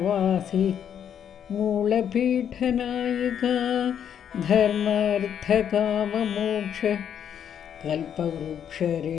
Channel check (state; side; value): quieter; right; 8.8 dB